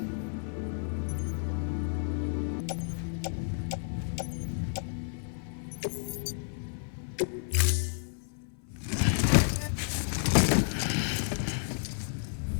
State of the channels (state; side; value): silent; right; 57 dB below the other